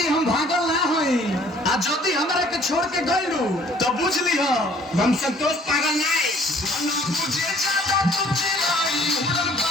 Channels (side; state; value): both; normal; correlation 0.57